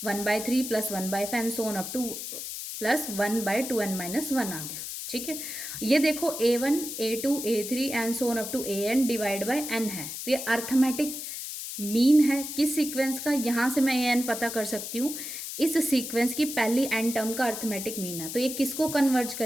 1/3 + 1/5 and so on up to plus 1/2n - 1 आ गया। ठीक है, ये देखो a1 a2 a3 and so on up to an divide by n है, तो ये अर्थमेटिक मीन है किस सीक्वेंस का, यहाँ से मैं an पता कर सकती हूँ, इस सीक्वेंस की पहली n टर्म का अर्थमेटिक मीन है। तो ये किसको कन्वर्ज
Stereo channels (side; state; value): left; noise; hiss, 7 dB below the sound